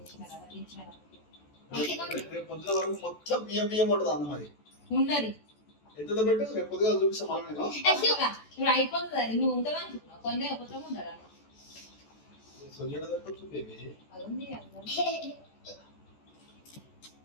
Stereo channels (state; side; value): late; right; 14 ms